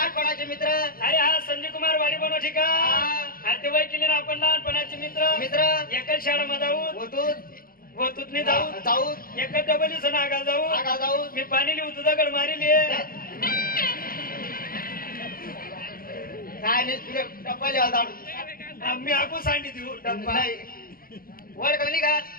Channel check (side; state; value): right; late; 0.42 ms